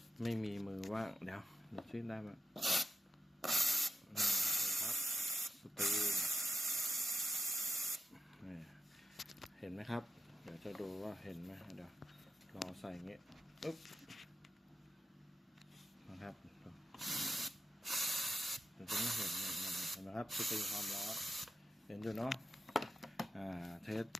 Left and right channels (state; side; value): normal; both; correlation 0.89